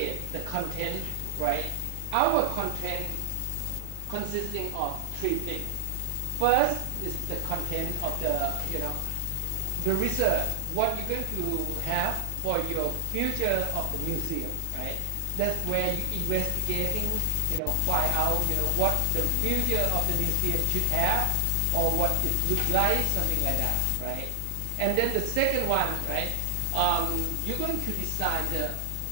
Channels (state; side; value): different; both; correlation 0.00